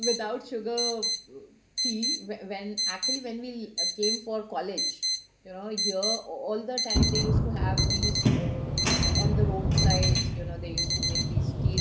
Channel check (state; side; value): identical; both; correlation 1.00